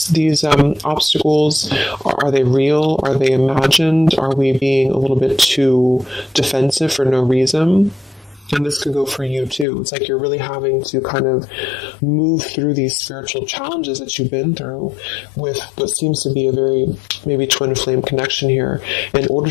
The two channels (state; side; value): drops out; right; at 9.7 s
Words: obstacles? Are they real? Are they imagined? Are we being a little bit too defensive for no reason? And this could go for you too. It's like you're really having to kind of move through these spiritual challenges that you've been through with what seems to be a very maybe twin flame connection here, in order